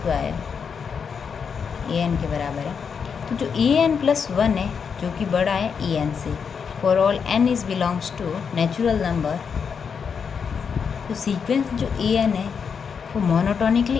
an के बराबर है। तो जो an+1 है जो कि बड़ा है en से, for all n is belongs to natural number, तो सीक्वेंस जो an है वो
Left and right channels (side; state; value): right; quieter; 6.4 dB